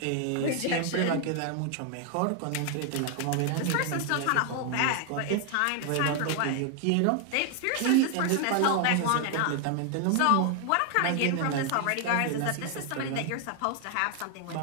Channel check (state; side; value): different; both; correlation 0.00